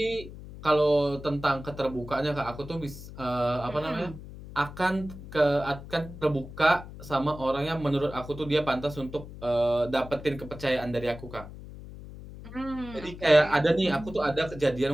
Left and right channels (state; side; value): noise; left; hum, 14 dB below the sound